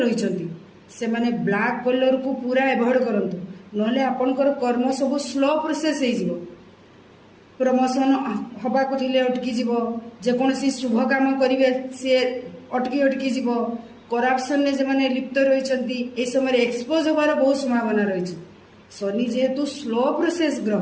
ରହିଛନ୍ତି ସେମାନେ ବ୍ଲାକ୍ କଲର୍କୁ ପୁରା ଏଭଏଡ୍ କରନ୍ତୁ, ନହେଲେ ଆପଣଙ୍କର କର୍ମ ସବୁ ସ୍ଲୋ ପ୍ରୋସେସ୍ ହେଇଯିବ। ପ୍ରମୋସନ୍ ହେବାକୁ ଥିଲେ ଅଟକିଯିବ, ଯେକୌଣସି ଶୁଭ କାମ କରିବେ ସିଏ ଅଟକି ଯିବ। କରାପସନ୍ରେ ଯେଉଁମାନେ ଲିପ୍ତ ରହିଛନ୍ତି ଏ ସମୟରେ ଏକ୍ସପୋଜ୍ ହେବାର ବହୁତ ସମ୍ଭାବନା ରହିଛି। ଶନି ଯେହେତୁ ସ୍ଲୋ ପ୍ରୋସେସ୍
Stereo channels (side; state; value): both; identical; correlation 1.00